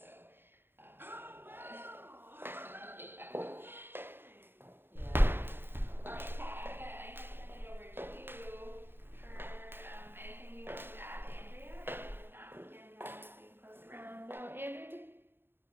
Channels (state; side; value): late; left; 0.10 ms